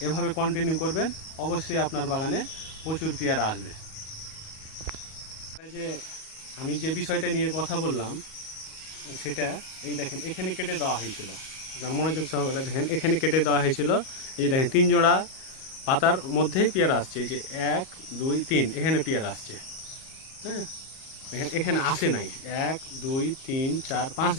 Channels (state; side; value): late; right; 38 ms